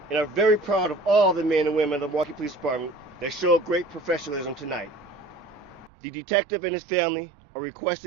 and are very proud of all the men and women of the Milwaukee Police Department that showed great professionalism tonight. The detective and his family are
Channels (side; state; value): left; drops out; at 5.9 s